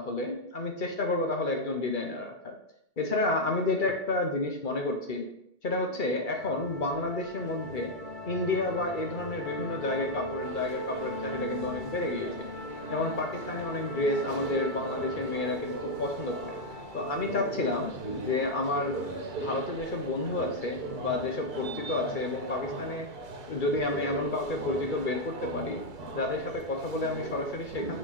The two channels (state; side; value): late; right; 2.3 ms